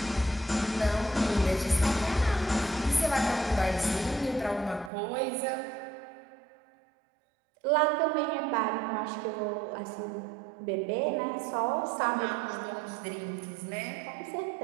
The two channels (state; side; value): drops out; left; at 4.9 s